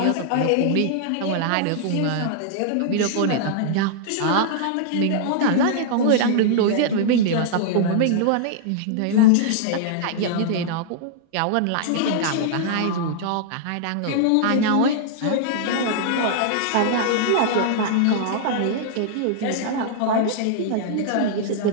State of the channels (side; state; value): both; different; correlation -0.01